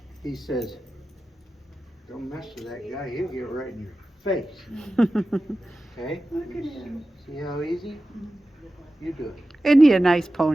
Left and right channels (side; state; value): both; normal; correlation 0.94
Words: he says, don't mess with that guy, he'll get right in your face. Okay? Look at him. See how easy? You do it. Isn't he a nice